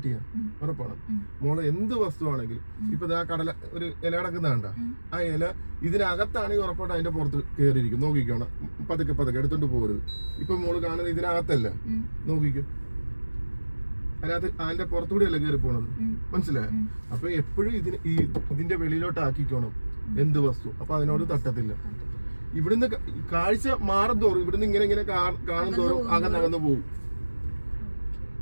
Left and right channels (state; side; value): inverted; both; correlation -1.00